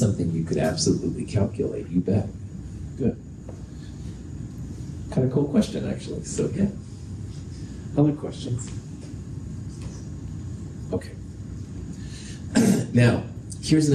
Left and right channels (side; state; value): both; identical; correlation 1.00